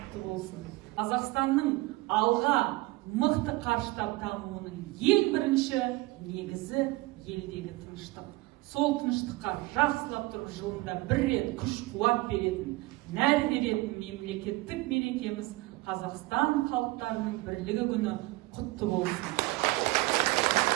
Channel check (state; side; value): quieter; left; 21.1 dB